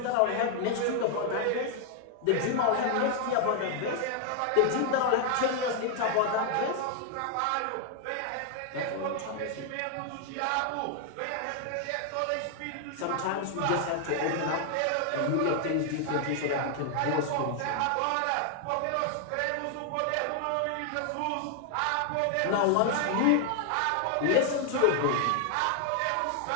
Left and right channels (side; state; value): both; different; correlation 0.00